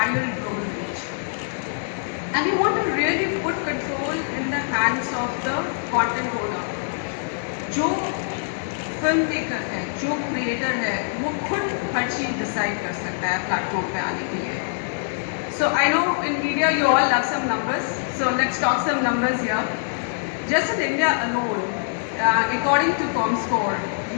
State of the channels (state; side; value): silent; right; digital silence